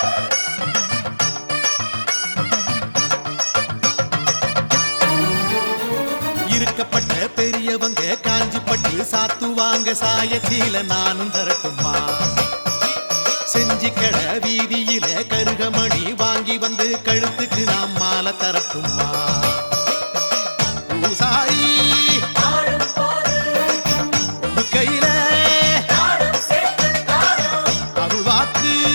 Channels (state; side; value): inverted; both; correlation -1.00